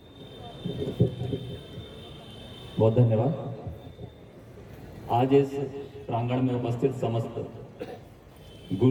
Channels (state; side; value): identical; both; correlation 1.00